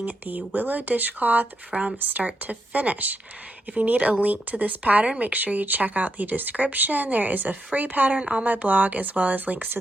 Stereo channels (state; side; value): normal; both; correlation 0.82